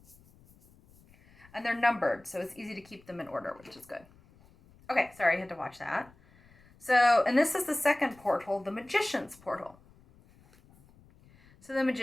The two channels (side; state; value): left; noise; rumble, 27 dB below the sound